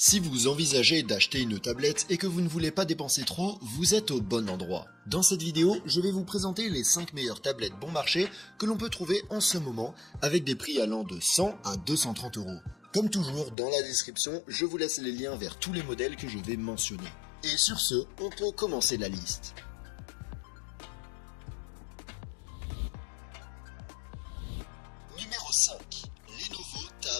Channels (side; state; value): right; drops out; at 13.6 s